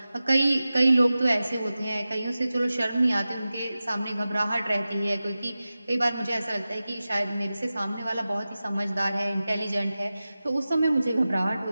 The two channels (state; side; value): inverted; both; correlation -0.95